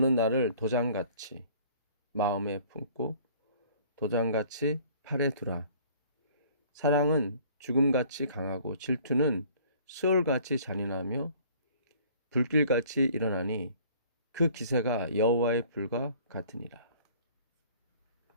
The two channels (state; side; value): inverted; both; correlation -0.53